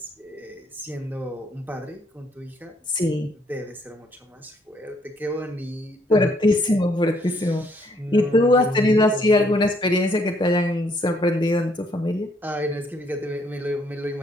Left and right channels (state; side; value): normal; both; correlation 0.68